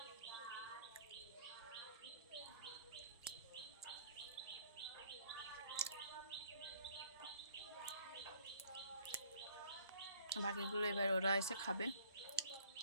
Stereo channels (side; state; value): both; inverted; correlation -0.57